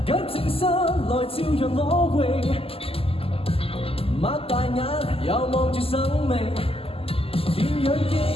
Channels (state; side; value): late; right; 0.28 ms